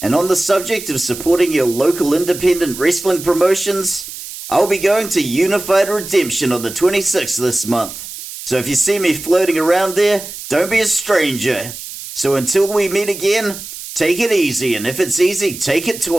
on the subject of supporting your local independent wrestling promotions, I'll be going to Unified Redemption on the 26th this month. So if you see me floating around there, don't be a stranger. So until we meet again, take it easy, and if it's easy, take it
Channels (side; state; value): right; noise; hiss, 11 dB below the sound